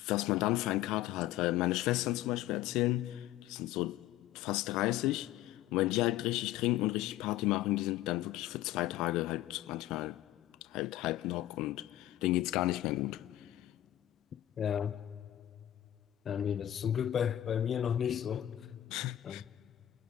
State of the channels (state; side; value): quieter; right; 13.6 dB